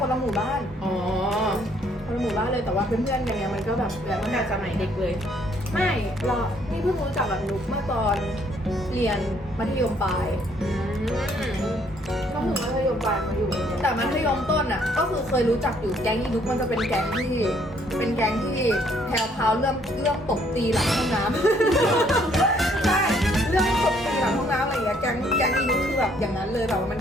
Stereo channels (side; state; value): both; normal; correlation 0.65